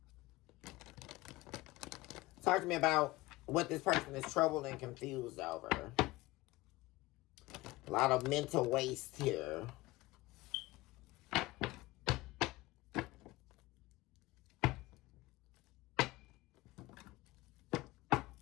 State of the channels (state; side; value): quieter; right; 19.8 dB